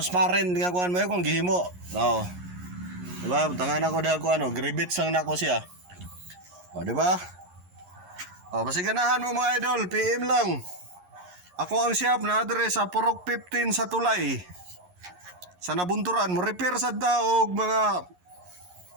nga kuan mo kung gihimo. Diba? Butangan ako dahil gribits lang na ako siya. Diba? Pasiganahan mo mga idol, PM lang. Ako ang shop na address sa Purok 15 sa Tulay. Sa Nabunturan, mo repair sa daog mga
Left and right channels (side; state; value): left; late; 11 ms